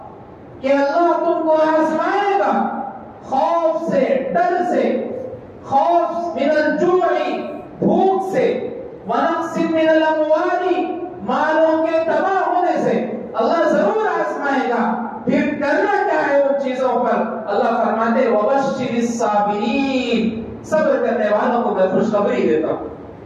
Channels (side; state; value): both; identical; correlation 1.00